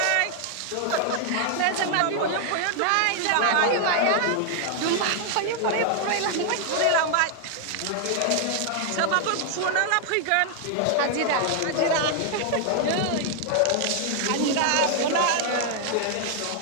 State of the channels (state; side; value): different; both; correlation 0.00